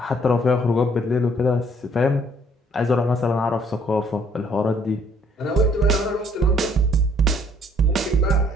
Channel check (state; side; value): normal; both; correlation 0.63